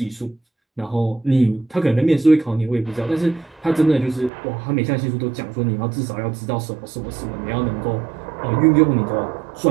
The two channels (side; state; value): left; drops out; at 4.3 s